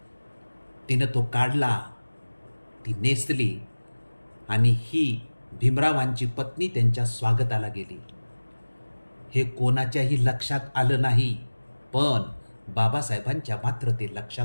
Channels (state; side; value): inverted; both; correlation -1.00